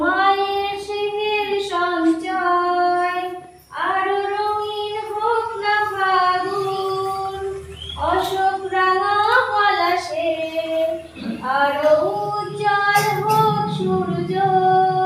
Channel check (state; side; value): identical; both; correlation 1.00